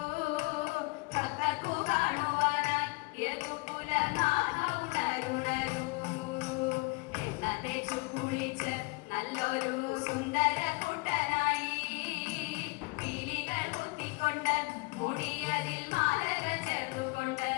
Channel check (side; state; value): right; quieter; 27.4 dB